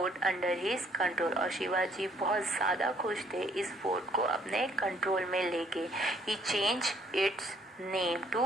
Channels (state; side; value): normal; both; correlation 0.64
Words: under his control. और शिवाजी बहुत ज़्यादा खुश थे इस फोर्ट को अपने कंट्रोल में लेके। He change its name